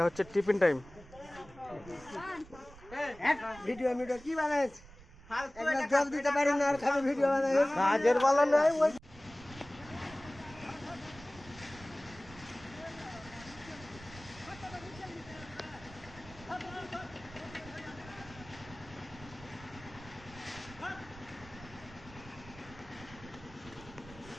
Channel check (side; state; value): right; noise; rumble, 19 dB below the sound